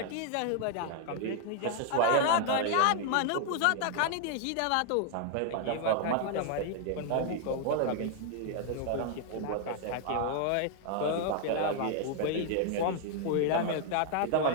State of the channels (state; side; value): different; both; correlation 0.00